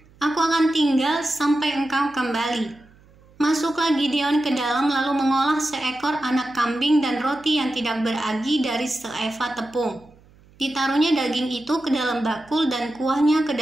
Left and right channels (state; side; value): noise; right; hum, 28 dB below the sound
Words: aku akan tinggal sampai engkau kembali." Masuklah Gideon ke dalam lalu mengolah seekor anak kambing dan roti yang tidak beragi dari seeva tepung. Ditaruhnya daging itu ke dalam bakul dan kuahnya ke